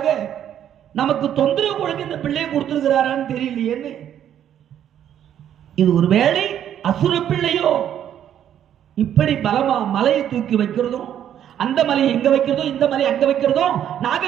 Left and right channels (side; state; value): left; quieter; 10.2 dB